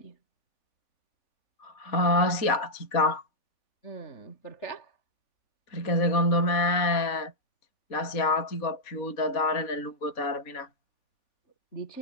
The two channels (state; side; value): late; right; 3.5 ms